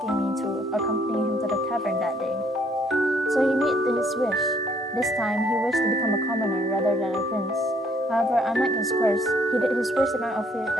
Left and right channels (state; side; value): normal; both; correlation 0.65